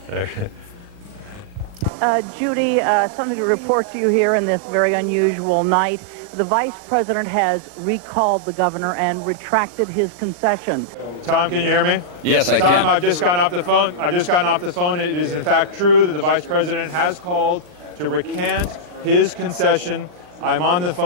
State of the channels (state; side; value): late; left; 39 ms